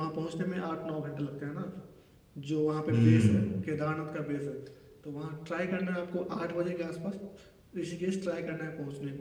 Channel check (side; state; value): both; identical; correlation 1.00